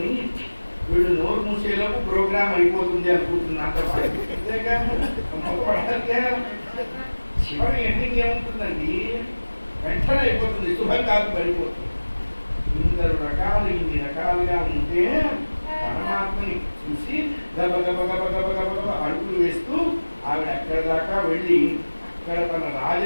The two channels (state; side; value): inverted; both; correlation -1.00